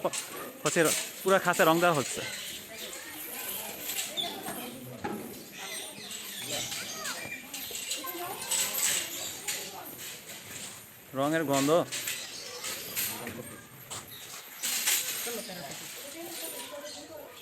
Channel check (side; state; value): both; identical; correlation 1.00